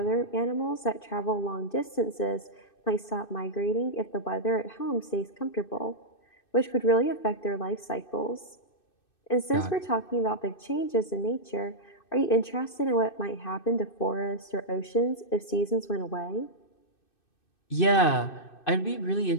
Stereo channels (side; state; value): right; late; 2.6 ms